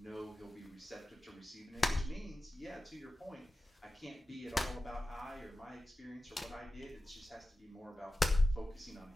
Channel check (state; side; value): normal; both; correlation 0.95